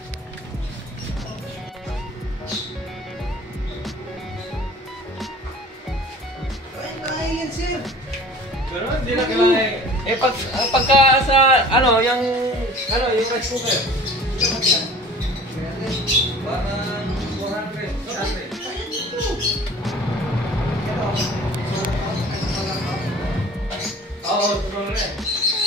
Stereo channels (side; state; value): both; normal; correlation 0.46